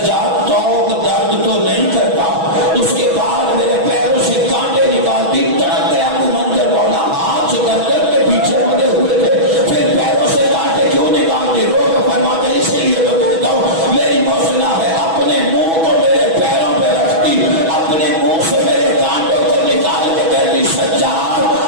توق درد تو نہیں کرتا اس کے بعد میرے پیروں سے کانٹے نکالتی تڑپ گیا ابو منظر مولا ہاتھ گردن کے پیچھے مدے ہوئے تھے پھر پیروں سے کانٹے کیوں نکالتی رو کے فرماتے اسی لیے تو کہتا ہوں میری محسنہ ہے اپنے منہ کو میرے پیروں پہ رکھتی اپنے منہ سے میرے کانٹوں کو نکال کے کہتی سجاد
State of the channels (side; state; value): left; late; 6.1 ms